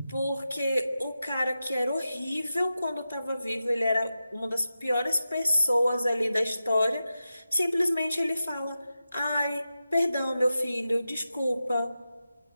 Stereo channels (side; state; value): both; inverted; correlation -0.91